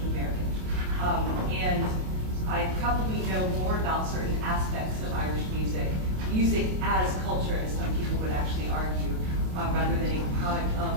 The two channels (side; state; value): left; late; 27 ms